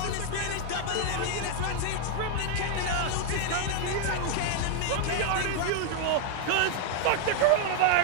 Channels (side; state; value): both; different; correlation -0.01